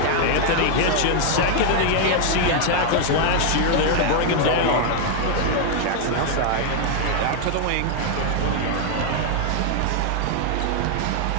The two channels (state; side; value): different; both; correlation 0.00